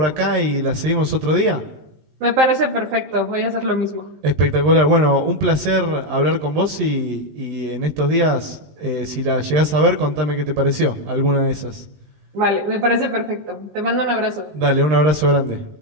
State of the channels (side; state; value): left; late; 20 ms